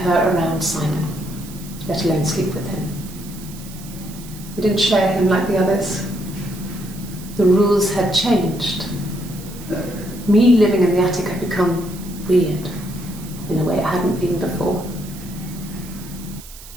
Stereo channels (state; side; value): noise; right; hiss, 17 dB below the sound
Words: around Simon, let alone sleep with him. We didn't share him like the others. The rules had changed. Me living in the attic had become weird in a way it hadn't been before.